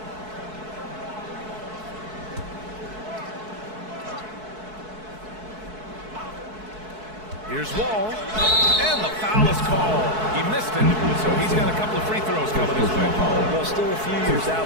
Here's Wall, and the foul is called. He missed it, so he's got a couple of free throws coming his way. Well, still a few years out,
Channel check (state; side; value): late; left; 4.6 ms